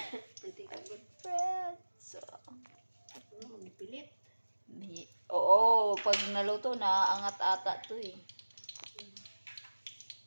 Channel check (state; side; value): inverted; both; correlation -1.00